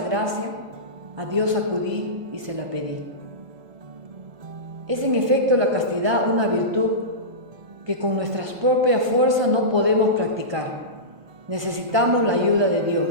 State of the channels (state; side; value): late; left; 1.5 ms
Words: gracia, a Dios acudí y se la pedí. Es en efecto la castidad una virtud que con nuestras propias fuerzas no podemos practicar. Necesitamos la ayuda de